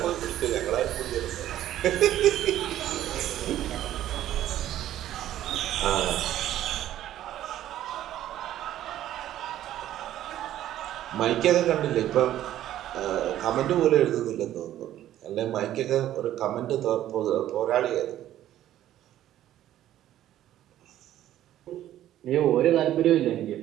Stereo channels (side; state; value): left; quieter; 12.6 dB